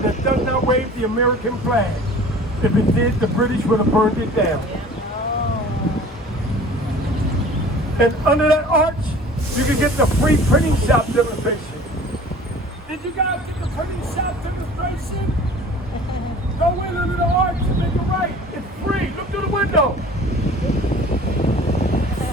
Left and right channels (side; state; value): both; normal; correlation 0.45